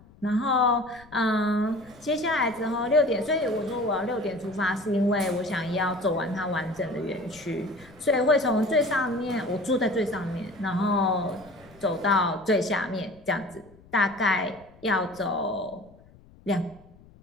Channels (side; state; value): left; noise; rumble, 25 dB below the sound